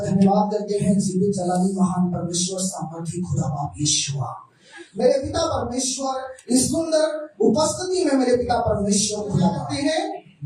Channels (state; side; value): identical; both; correlation 1.00